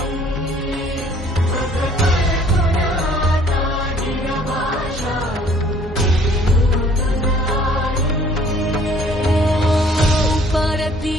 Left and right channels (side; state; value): both; normal; correlation 0.57